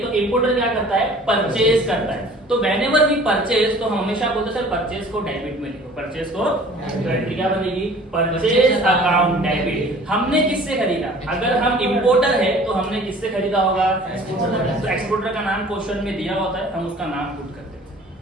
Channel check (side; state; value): both; normal; correlation 0.49